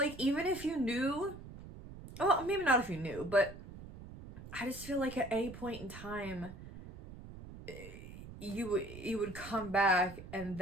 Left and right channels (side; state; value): right; noise; rumble, 14 dB below the sound